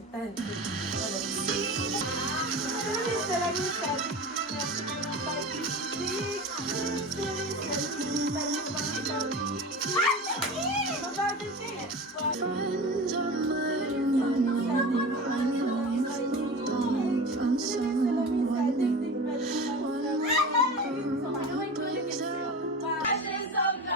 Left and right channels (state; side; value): normal; both; correlation 0.31